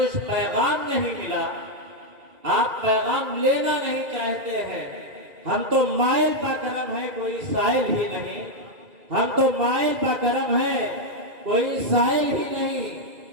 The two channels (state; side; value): late; left; 2.3 ms